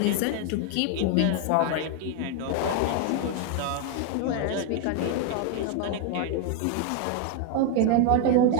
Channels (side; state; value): both; different; correlation 0.00